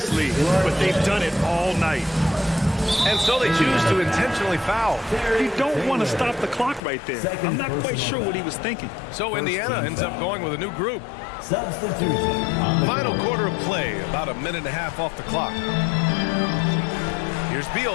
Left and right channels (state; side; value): drops out; right; at 6.8 s